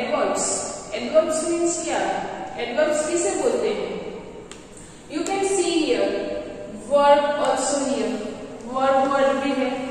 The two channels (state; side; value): identical; both; correlation 1.00